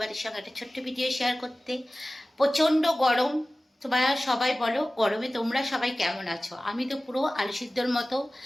সঙ্গে একটা ছোট্ট ভিডিও শেয়ার করতে। প্রচণ্ড গরম। তোমরা সবাই বলো গরমে তোমরা সবাই কেমন আছো? আমি তো পুরো আলু সিদ্ধর মতো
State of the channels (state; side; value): normal; both; correlation 0.97